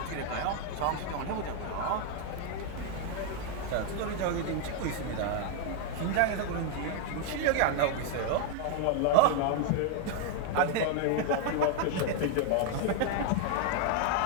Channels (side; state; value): both; different; correlation 0.01